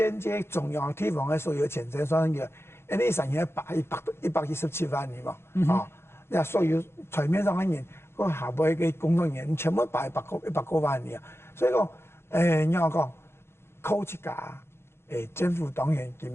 接中央地方的所有钱财算个，安尼生人117万人嘛，啊，那所有台面上的人。个下尾嘅工作人员全部100多万年啊，所以讲，你我讲，靠一家，政府当然佢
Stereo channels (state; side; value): late; right; 0.12 ms